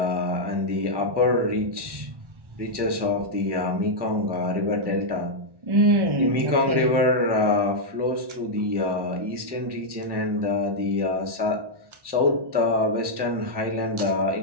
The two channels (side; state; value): left; late; 1.1 ms